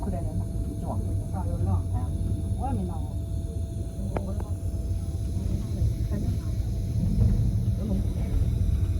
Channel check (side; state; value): both; identical; correlation 1.00